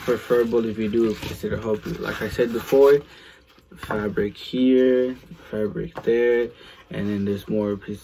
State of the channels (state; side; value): identical; both; correlation 1.00